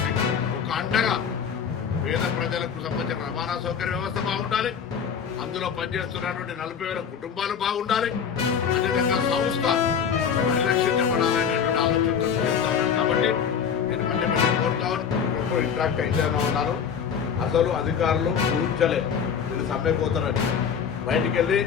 ఒక అండగా పేద ప్రజలకు సంబంధించిన రవాణా సౌకర్య వ్యవస్థ బాగుండాలి, అందులో పనిచేస్తున్నటువంటి 40,000 కుటుంబాలు బాగుండాలి, అదేవిధంగా సంస్థ పరిరక్షించబడాలనేటువంటి ఆలోచనతో చేస్తా ఉన్నాను. కాబట్టి నేను మళ్ళీ కోరుతా ఉన్నాను, ఇంట్రాక్ట్ అయితేనే ఉన్నాను. అసలు అధికారులు ఊహించలే మీరు సమ్మెకు పోతారని. బయటికి వెళ్ళి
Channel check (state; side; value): quieter; right; 7.3 dB